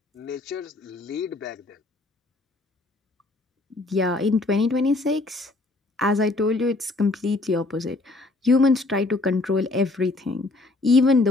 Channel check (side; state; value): right; quieter; 3.1 dB